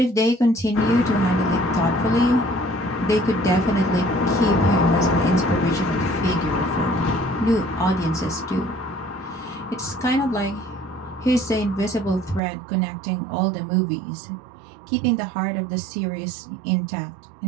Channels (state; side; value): drops out; left; at 12.4 s